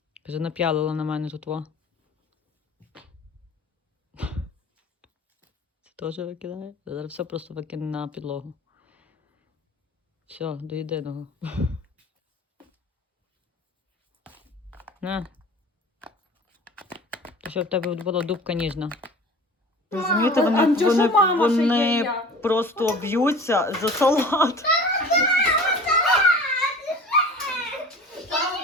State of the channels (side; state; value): both; normal; correlation 0.41